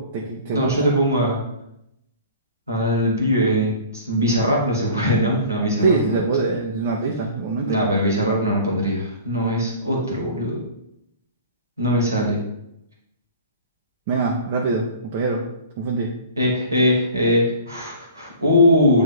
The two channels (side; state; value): both; inverted; correlation -0.43